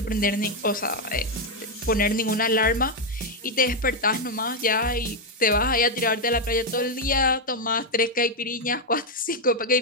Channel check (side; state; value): both; normal; correlation 0.02